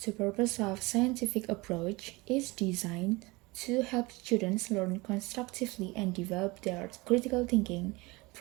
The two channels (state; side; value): quieter; left; 23.6 dB